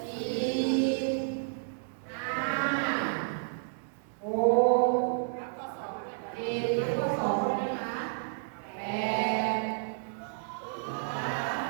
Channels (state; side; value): silent; left; digital silence